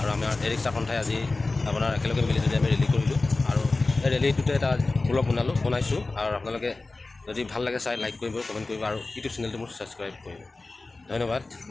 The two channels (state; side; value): quieter; right; 3.4 dB